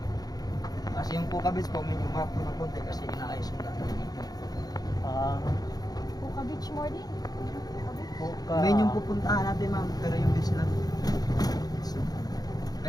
Kasi yung Puka Beach po, medyo map ko ng konti kasi inaayos yung daan. Ah, Puka Beach morning. Puka. May yung pupuntahan natin ma'am, pero yung beach lang.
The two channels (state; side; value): late; right; 0.19 ms